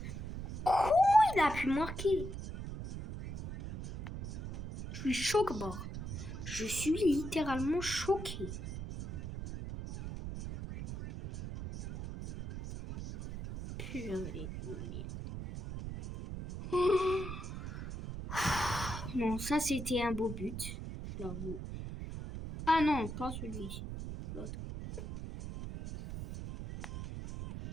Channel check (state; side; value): noise; right; rumble, 7 dB below the sound